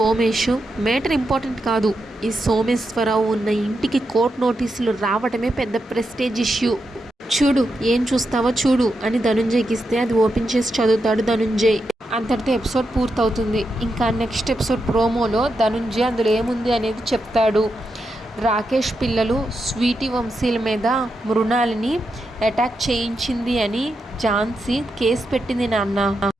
మేటర్ ఇంపార్టెంట్ కాదు, ఈ సోమేశ్వరరావు ఉన్న ఇంటికి కోర్టు నోటీసులు రావడమే పెద్ద ప్రెస్టేజ్ ఇష్యూ, చూడు ఏం చూస్తావో చూడు అని ధనుంజయ్కి ఇస్తే అది ఓపెన్ చేసి చదువుతాడు ధనుంజయ్. అంతటితో ఎపిసోడ్ పూర్తవుతుంది. ఇంకా నెక్స్ట్ ఎపిసోడ్ ప్రోమోలో ధనుంజయ్ అందులో ఏముంది అనేది చెప్తాడు. రాకేష్ పిల్లలు స్వీటీ వంశీల మీద మృణాలిని అటాక్ చేయించింది అని ఝాన్సీ కేసు పెట్టింది నాన్న,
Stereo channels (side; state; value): both; normal; correlation 0.85